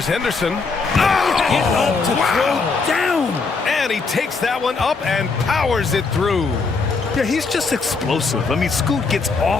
Henderson. Get up to throw down. And he takes that one up and powers it through. Yeah, he's just explosive. I mean, Scoot gets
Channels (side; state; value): right; quieter; 4.4 dB